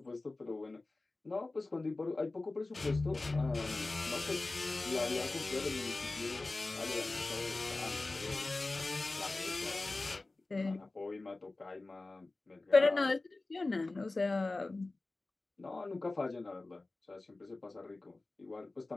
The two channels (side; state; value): right; quieter; 3.2 dB